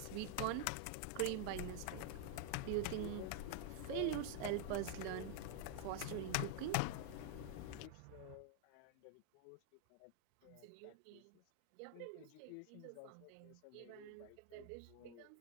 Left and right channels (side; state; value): both; different; correlation 0.00